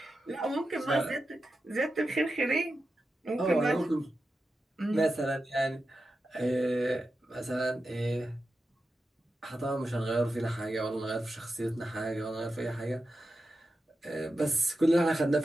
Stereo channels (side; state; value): both; normal; correlation 0.91